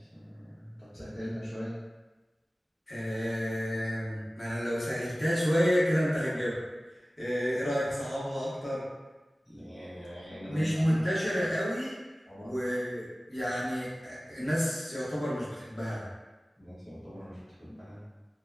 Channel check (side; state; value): both; normal; correlation 0.97